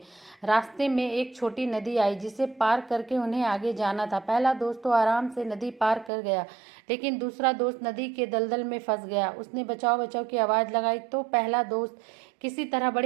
रास्ते में एक छोटी नदी आई जिसे पार करके उन्हें आगे जाना था। पहला दोस्त तो आराम से नदी पार कर गया, लेकिन दूसरा दोस्त नदी के दलदल में फंस गया। उसने बचाओ बचाओ की आवाज़ लगाई तो पहला दोस्त किसी तरह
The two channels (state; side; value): drops out; left; at 6.1 s